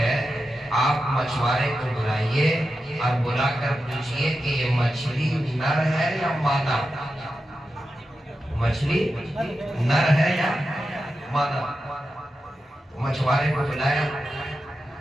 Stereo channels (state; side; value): normal; both; correlation 0.90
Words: آپ مچھوارے کو بلائیے اور بلا کر پوچھئے کہ یہ مچھلی نر ہے یا مادہ؟ مچھلی نر ہے یا مادہ؟ مچھوارے کو بلایا،